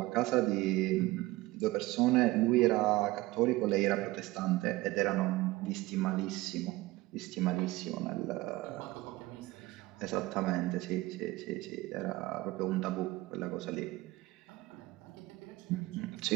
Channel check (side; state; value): left; quieter; 19.5 dB